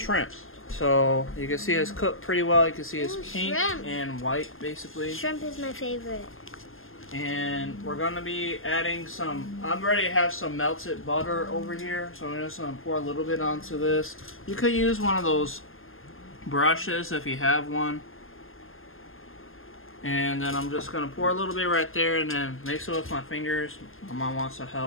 So you can see it's cooked pretty well. You can see it's pink and white basically. Shrimp is my favorite. And we're gonna be adding some. I already have some melted butter over here, so I'm just gonna pour a little bit onto this. You could use one of those brushes if you have one. And then I'm just gonna pour a little bit right there, and then mix it with my fingers. My mom wants to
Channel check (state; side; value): late; right; 0.60 ms